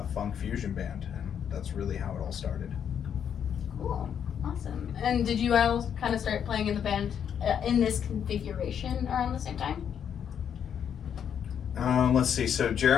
funk fusion band. And that's really how it all started. Cool. Awesome. And did you all kind of start playing in the band in this configuration around the same time? Let's see. So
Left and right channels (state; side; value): quieter; right; 8.4 dB